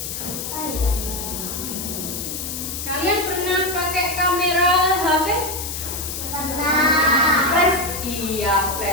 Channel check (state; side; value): noise; left; hiss, 6 dB below the sound